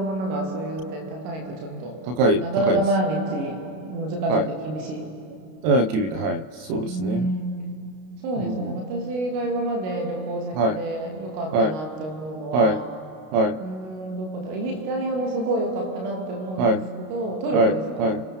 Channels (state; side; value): late; left; 32 ms